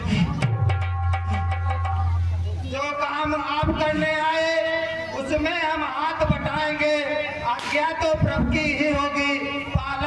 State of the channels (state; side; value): identical; both; correlation 1.00